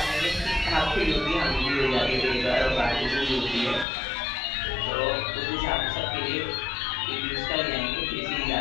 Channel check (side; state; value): right; drops out; at 3.9 s